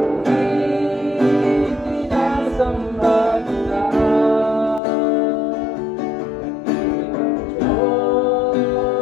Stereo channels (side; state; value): right; drops out; at 4.8 s